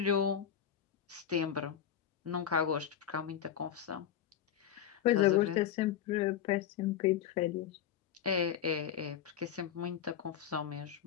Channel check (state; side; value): quieter; right; 9.4 dB